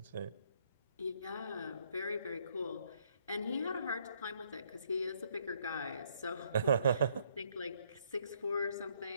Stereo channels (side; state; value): both; inverted; correlation -0.68